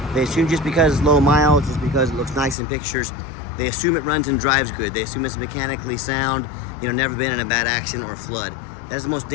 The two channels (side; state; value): right; drops out; at 2.6 s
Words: They assume just because it's low miles, just because it looks nice in pictures, they assume it runs and drives good. They assume it's mechanically sound, never been in a bad accident or flood. That is the most